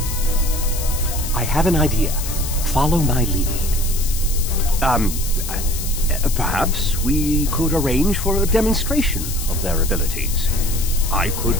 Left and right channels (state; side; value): noise; left; hiss, 7 dB below the sound